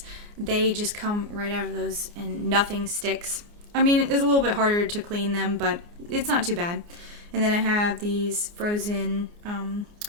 They just come right out of those and nothing sticks. I mean, it's a little bit harder to clean them, but it's not too bad. And then I have these frozen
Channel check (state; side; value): late; left; 29 ms